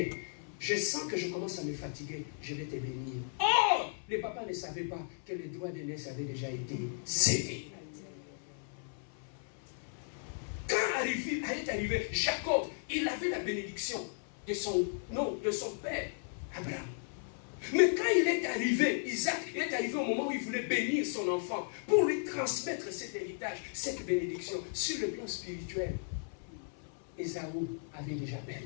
je sens que je commence à me fatiguer, je vais te bénir. Oh! Les papas ne savaient pas que les droits d'aînesse avaient déjà été cédés. Quand est arrivé Jacob, il avait la bénédiction de son père, Abraham. Mais quand il est arrivé, Isaac, il est arrivé au moment où il voulait bénir son enfant pour lui transmettre cet héritage, cette bénédiction sur le plan spirituel. Ésaü avait déjà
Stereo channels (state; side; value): silent; right; 54 dB below the other